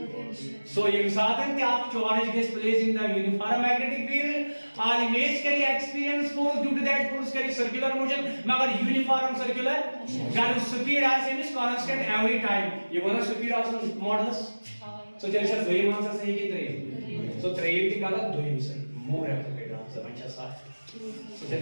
ये साधन कि आप charge gets placed in the uniform magnetic field, और image करी experience force due to that force करी circular motion, मगर uniform circular, जब speed as is constant every time, ये वाला speed also modulus, so चलिए सर दो ही आंसर सही की तरह, so त्रियम की गलत दो ही सही, more appropriate answer अच्छा साफ, so चलिए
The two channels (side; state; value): both; inverted; correlation -1.00